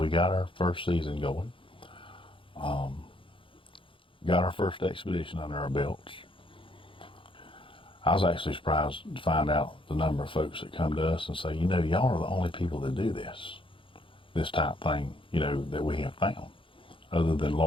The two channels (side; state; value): right; late; 0.25 ms